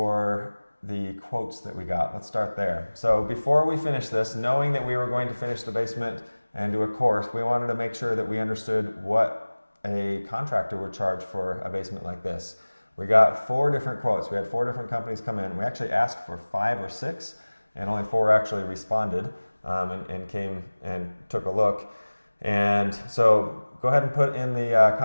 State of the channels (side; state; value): both; inverted; correlation -1.00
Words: the quotes that we got. Let's start there. So before we finish this, knowing that we were going to finish the basement and do a course, we wanted to make sure that we understood what a contractor would charge for a basement like this. We got 4 different quotes. We had 4 different companies come in. We actually asked for 5 or 6, and only 4 actually responded and came and took a look. And so go ahead and put in the